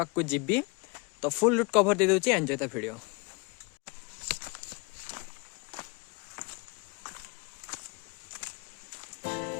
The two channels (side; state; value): right; quieter; 29.7 dB